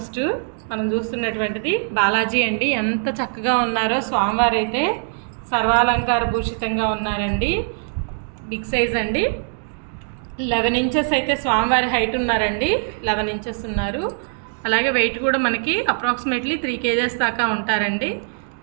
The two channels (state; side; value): silent; left; 61 dB below the other